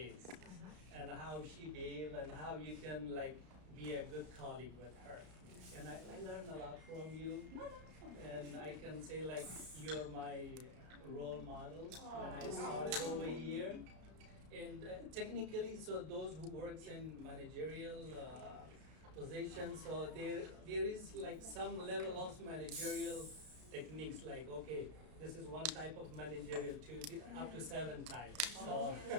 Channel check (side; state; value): left; late; 33 ms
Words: and how she behaves and how you can like be a good colleague with her. And I learned a lot from you. And I can say like you're my role model when I started over here. And technically, so those who works in managerial positions, so there is like some level of managerial techniques, like okay, this is one type of managerial up to 7 types. So